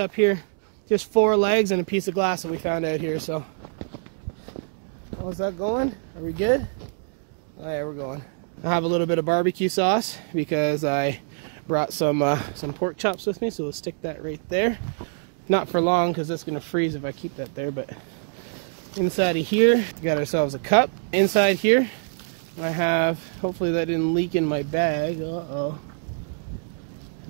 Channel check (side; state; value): left; silent; digital silence